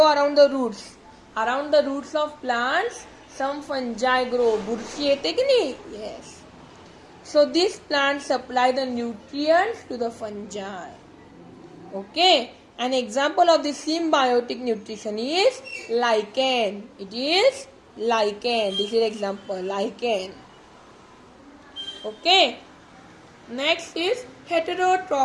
around the roots. Around the roots of plants, some fungi grow. Burshi yete ki nahi? Yes. So these plants supply the nutrients to the fungi. Okay. An example of this symbiotic nutrition is lichen. It is lichen. This is example, lichen. Okay. Next is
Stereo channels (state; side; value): identical; both; correlation 1.00